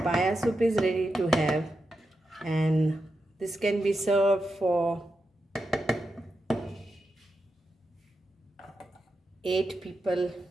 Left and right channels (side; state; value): both; normal; correlation 0.87